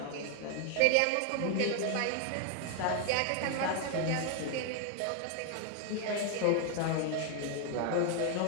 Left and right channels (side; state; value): both; different; correlation 0.01